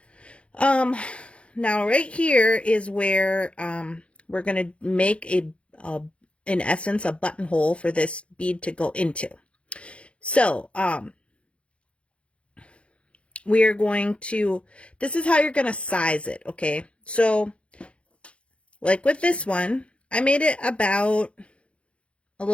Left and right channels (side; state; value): right; late; 0.060 ms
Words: Now right here is where we're going to make in essence a buttonhole for this bead to go into. So we are going to, this is how you're going to size it, okay? So like with this one, I made it about a